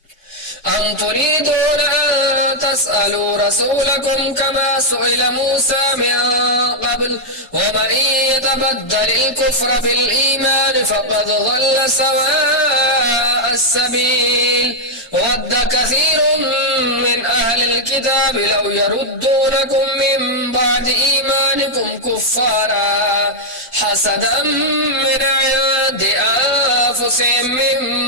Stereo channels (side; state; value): both; normal; correlation -0.03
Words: أم تريدون أن تسألوا رسولكم كما سئل موسى من قبل ومن يتبدل الكفر بالإيمان فقد ضل سواء السبيل ود كثير من أهل الكتاب لو يردونكم من بعد إيمانكم كفارا حسدا من عند أنفسهم